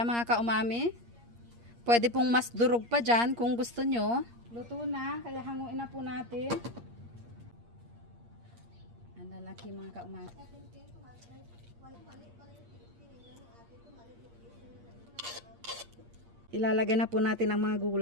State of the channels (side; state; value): left; late; 8.5 ms